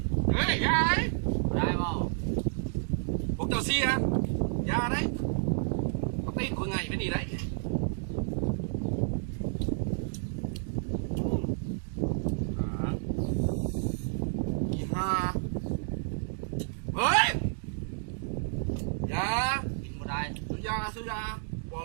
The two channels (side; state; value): left; silent; digital silence